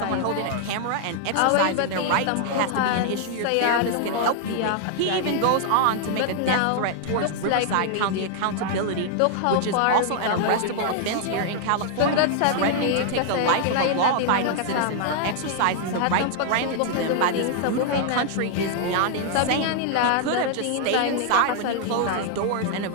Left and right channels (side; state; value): both; different; correlation 0.00